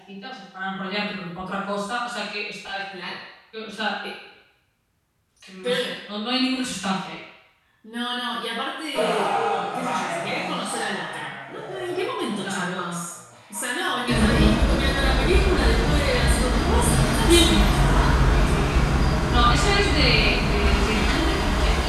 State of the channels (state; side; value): identical; both; correlation 1.00